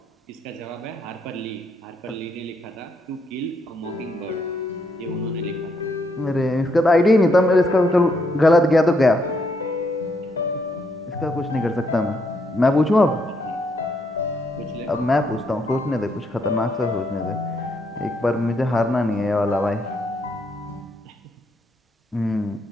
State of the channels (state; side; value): normal; both; correlation 0.75